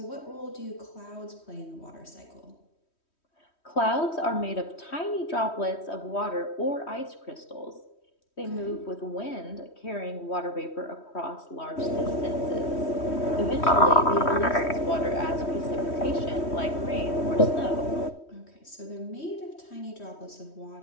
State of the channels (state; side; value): late; right; 3.1 ms